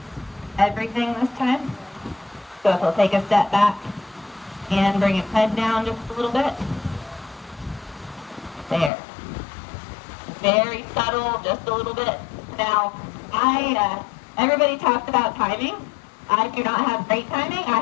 everything this time. So if he'll take a step back and bring his head down just a little bit. There. Very subtle, just a little bit. Now, everybody talks about timing. I do not have great timing. I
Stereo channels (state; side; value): drops out; right; at 8.9 s